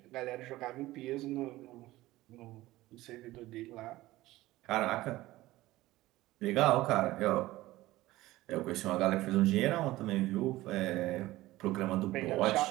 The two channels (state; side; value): quieter; left; 17.4 dB